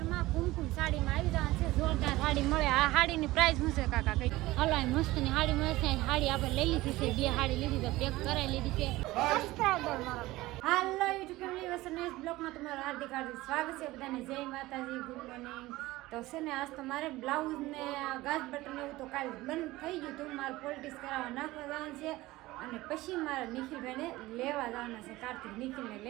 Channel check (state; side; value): quieter; left; 18.5 dB